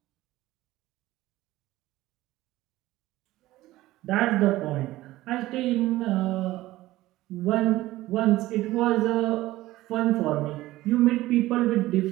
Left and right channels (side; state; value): left; quieter; 16.9 dB